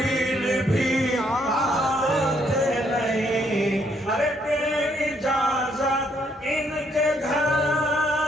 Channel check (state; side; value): normal; both; correlation 0.71